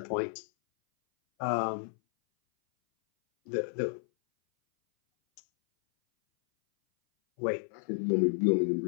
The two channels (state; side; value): silent; right; 57 dB below the other